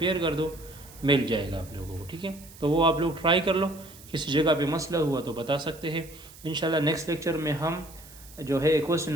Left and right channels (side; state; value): right; noise; hiss, 20 dB below the sound